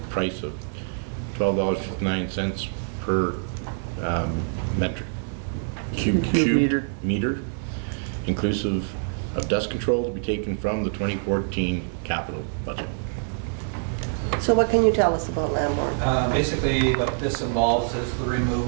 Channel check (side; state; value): left; silent; digital silence